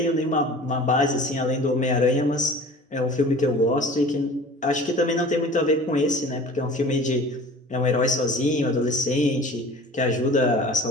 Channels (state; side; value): normal; both; correlation 0.43